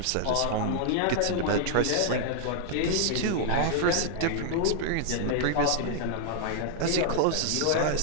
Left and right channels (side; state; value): both; different; correlation -0.01